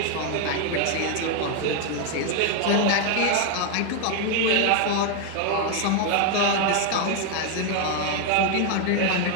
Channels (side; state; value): both; different; correlation 0.01